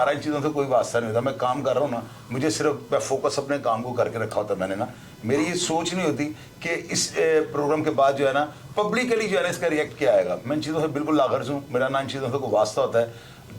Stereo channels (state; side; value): identical; both; correlation 1.00